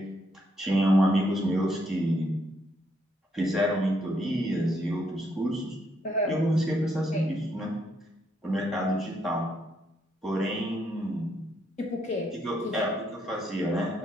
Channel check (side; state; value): both; normal; correlation 0.75